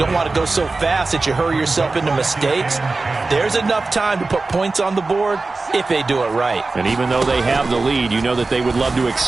want to go so fast that you hurry yourself into mistakes. There's enough time to put points on the board if they do it right. And even though they have the lead, you know that they would love to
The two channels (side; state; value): left; quieter; 3.6 dB